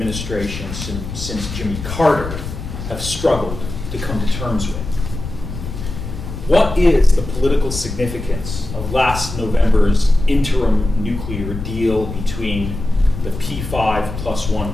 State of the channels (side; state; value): left; noise; rumble, 8 dB below the sound